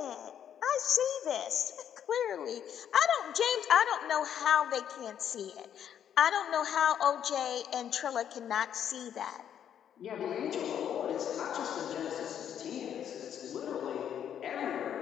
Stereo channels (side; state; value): right; quieter; 9.4 dB